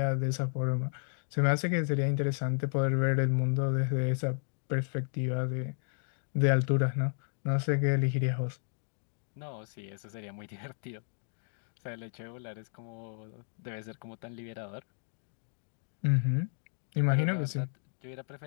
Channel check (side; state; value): right; silent; 56 dB below the other